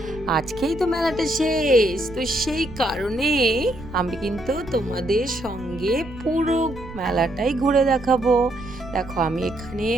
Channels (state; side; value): noise; right; rumble, 15 dB below the sound